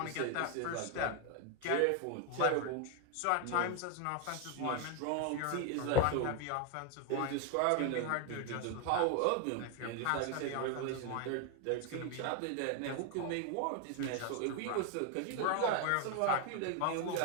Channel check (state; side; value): different; both; correlation 0.01